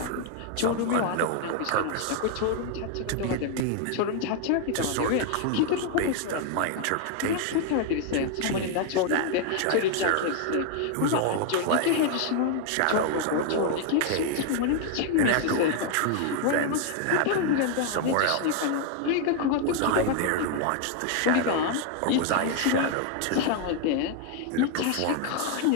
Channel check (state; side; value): different; both; correlation 0.00